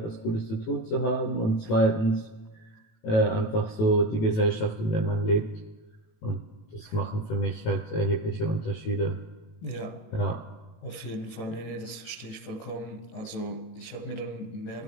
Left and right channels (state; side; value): late; right; 19 ms